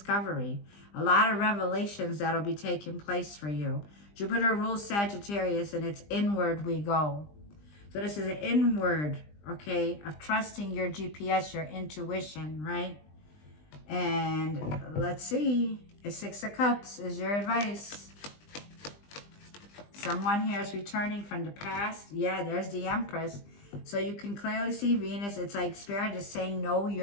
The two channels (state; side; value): late; right; 20 ms